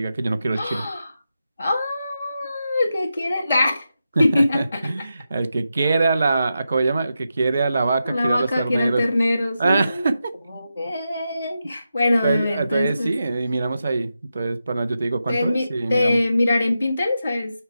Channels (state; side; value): inverted; both; correlation -0.88